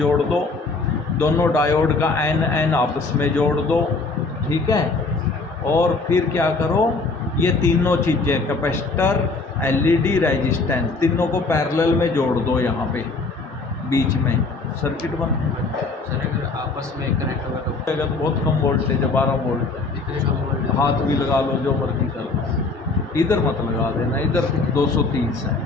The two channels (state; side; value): quieter; right; 3.8 dB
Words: दो, दोनों डायोड का एन आपस में जोड़ दो, ठीक है। और फिर क्या करो, ये तीनों चीज़ें, कैपेसिटर, एलईडी, रेजिस्टेंस, तीनों को पैरेलल में जोड़ दो, यहाँ पे बीच में सर्किट बन। सर अगर आपस में कनेक्ट होगा तो अगर बहुत कम वोल्टेज है, 12 वोल्ट है, इतने कम वोल्टेज हाथ भी लगा लो, जो मर्जी कर लो। इधर मत लगा देना, इधर 230 है,